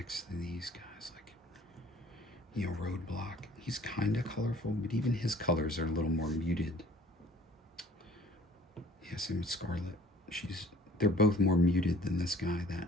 to these guys, like, you know, Roadblock. He's kind of colorful, but even his colors are a little more muted. Yeah, same with Scarlet. They're both more muted than this guy.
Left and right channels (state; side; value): normal; both; correlation 0.53